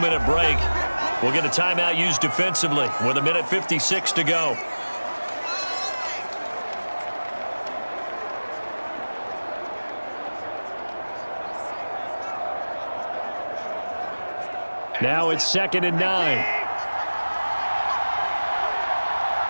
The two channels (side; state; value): both; inverted; correlation -1.00